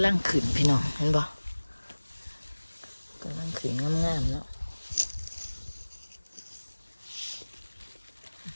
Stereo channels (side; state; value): both; inverted; correlation -1.00